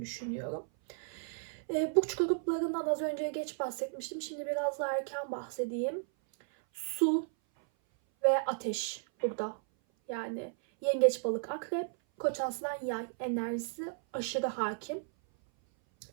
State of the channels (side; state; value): left; silent; 55 dB below the other